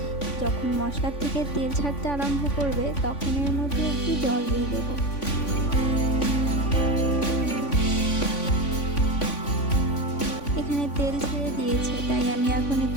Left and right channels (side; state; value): right; late; 3.5 ms